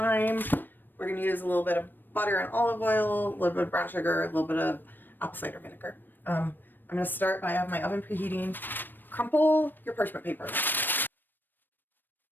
We're gonna use a little bit of butter and olive oil, a little bit of brown sugar, a little bit of apple cider vinegar. I'm gonna start by having my oven preheating. Crumple your parchment paper,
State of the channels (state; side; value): late; right; 0.093 ms